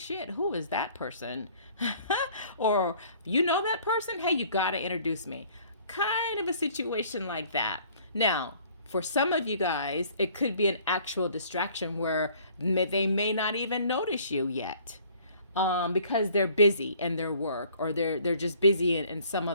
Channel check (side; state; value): both; inverted; correlation -0.56